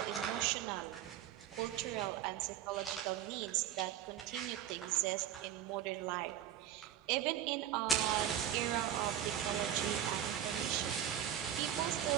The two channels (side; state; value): left; quieter; 10.8 dB